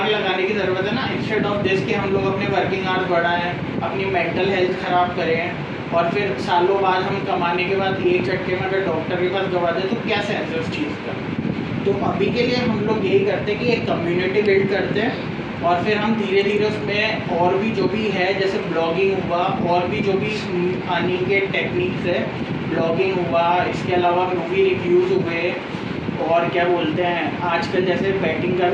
लगाने की ज़रूरत है ना, इंस्टेड ऑफ दिस कि हम लोग अपने वर्किंग आवर्स बढ़ाएं, अपनी मेंटल हेल्थ ख़राब करें और फिर सालों बाद हम कमाने के बाद एक झटके में अगर डॉक्टर के पास गवा दें तो क्या सेंस है उस चीज़ का। तो अभी के लिए हम लोग यही करते हैं कि एक कम्युनिटी बिल्ड करते हैं और फिर हम धीरे धीरे उसमें और भी जो भी है जैसे ब्लॉगिंग हुआ और भी जो भी अर्निंग के टेक्निक्स है, ब्लॉगिंग हुआ, इसके अलावा मूवी रिव्यूज़ हुए और क्या बोलते हैं आजकल जैसे बैटिंग का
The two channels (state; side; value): identical; both; correlation 1.00